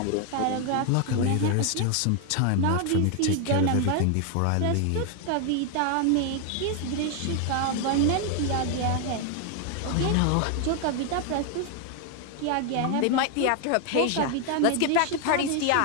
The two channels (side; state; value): both; different; correlation 0.01